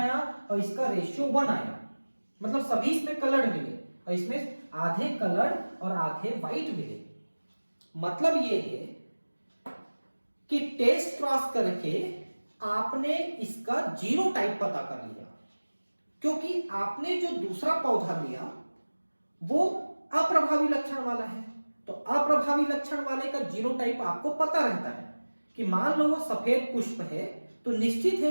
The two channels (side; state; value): both; inverted; correlation -1.00